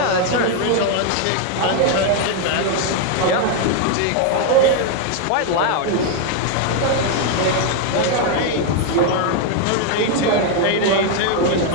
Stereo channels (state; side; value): different; both; correlation 0.01